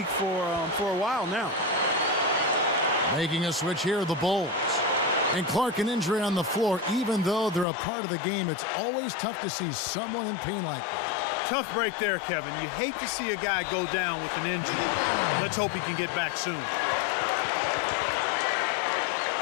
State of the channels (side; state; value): right; drops out; at 7.7 s